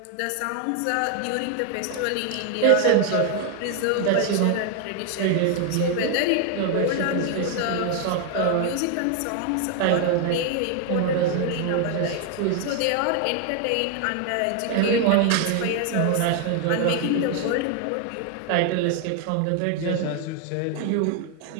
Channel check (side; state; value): both; different; correlation 0.01